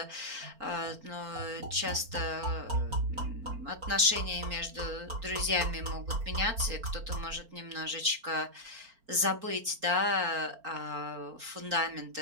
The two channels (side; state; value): left; late; 4.4 ms